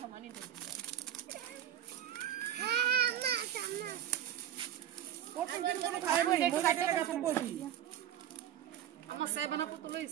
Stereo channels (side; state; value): left; quieter; 10.8 dB